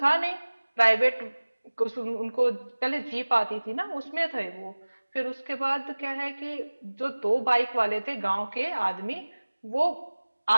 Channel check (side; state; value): both; inverted; correlation -1.00